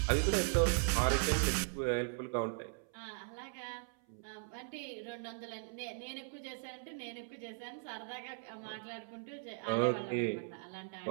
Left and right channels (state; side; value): silent; left; 52 dB below the other